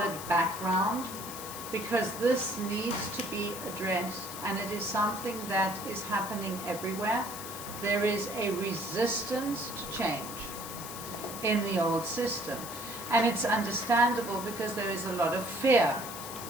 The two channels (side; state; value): left; noise; hiss, 10 dB below the sound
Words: background, because this needs to be addressed, and it is something that is happening everywhere. There is a resistance to change in the old system, and it's understandable because there is a lot of fear